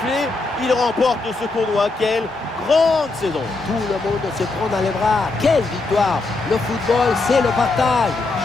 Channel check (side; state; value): right; quieter; 3.5 dB